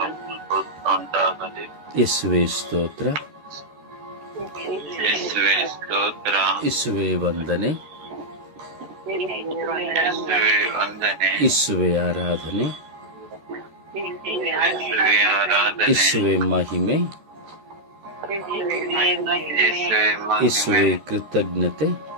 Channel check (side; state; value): left; late; 13 ms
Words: ಯೇಸುವೇ ಸ್ತೋತ್ರ, ಯೇಸುವೇ ವಂದನೆ, ಯೇಸುವೇ ಆರಾಧನೆ, ಯೇಸುವೇ ಮಹಿಮೆ, ಯೇಸುವೇ ಕೃತಜ್ಞತೆ.